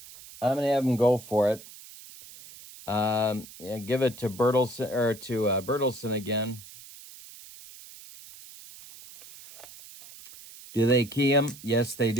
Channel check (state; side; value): noise; right; hiss, 18 dB below the sound